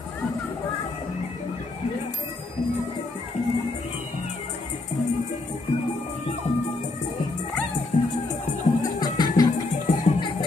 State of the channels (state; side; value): quieter; right; 3.2 dB